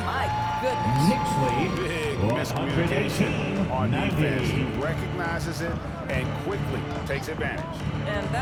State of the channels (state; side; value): identical; both; correlation 1.00